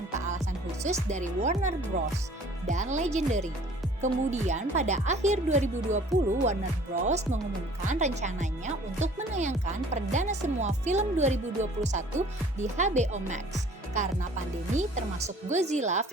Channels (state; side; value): normal; both; correlation 0.52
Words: alasan khusus dari Warner Bros. Dan Legendary. Kemudian pada akhir 2020, Warner Bros. Mengumumkan rencananya untuk menayangkan perdana semua film 2021 di HBO Max karena pandemi termasuk Godzilla